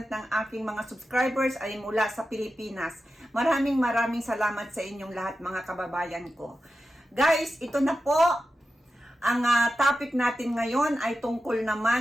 ng aking mga subscribers ay mula sa Pilipinas. Maraming salamat sa inyong lahat mga kababayan ko. Guys, ito na po. Ang topic natin ngayon ay tungkol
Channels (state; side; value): normal; both; correlation 0.91